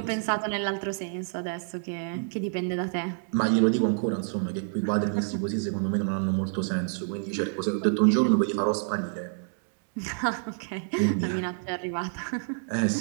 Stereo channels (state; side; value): silent; left; digital silence